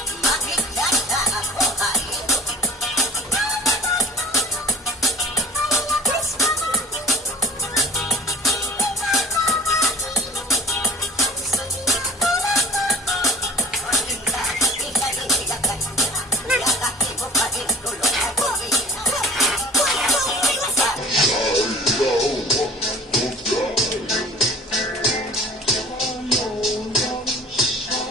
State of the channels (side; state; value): both; normal; correlation 0.43